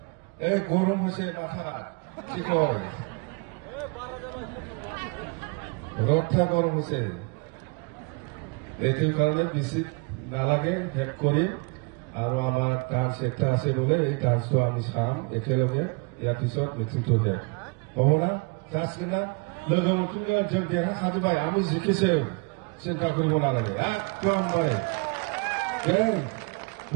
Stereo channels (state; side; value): quieter; left; 31.6 dB